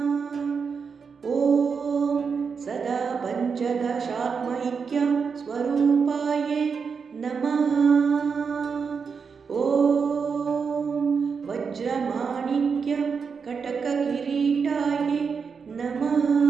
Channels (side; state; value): left; quieter; 5.7 dB